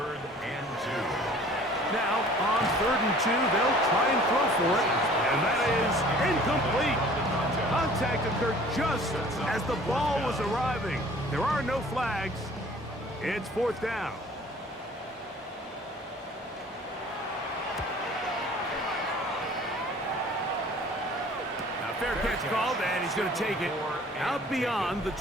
and 2. Now, on 3rd and 2, they'll try and throw for it, and that is incomplete. Contact occurred just as the ball was arriving. There are no flags. It's 4th down. Now, fair catch called, and he's going to take it out beyond the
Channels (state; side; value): normal; both; correlation 0.50